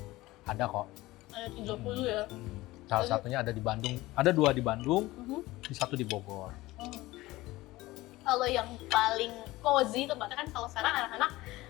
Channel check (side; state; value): right; quieter; 18.7 dB